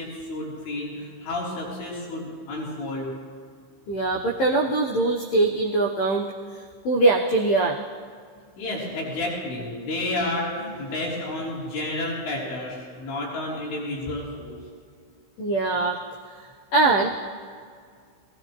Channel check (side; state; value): right; late; 16 ms